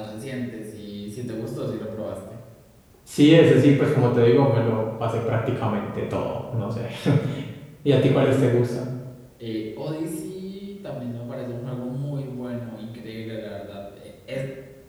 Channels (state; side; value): identical; both; correlation 1.00